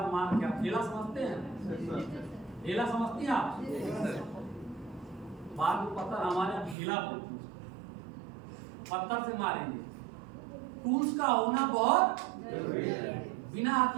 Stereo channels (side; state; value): left; drops out; at 6.8 s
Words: मार के। ढेला समझते हैं? ढेला समझती हैं आप? बाद में पत्थर हमारे ढेला बोलते हैं, पत्थर से मारेंगे। टूल्स का होना बहुत जरूरी है। बिना